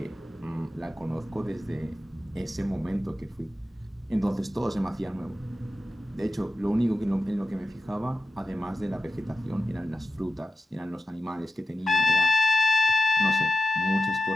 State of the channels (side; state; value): both; normal; correlation 0.92